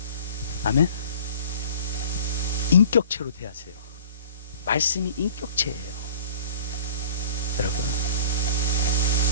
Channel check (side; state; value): both; inverted; correlation -0.47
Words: 아멘? 인격체로 대하세요. 말씀이 인격체예요. 여러분,